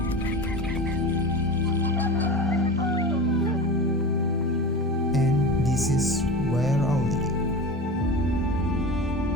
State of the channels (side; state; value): both; normal; correlation 0.30